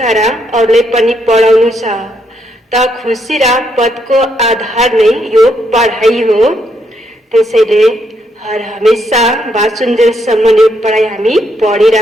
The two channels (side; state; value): both; normal; correlation 0.76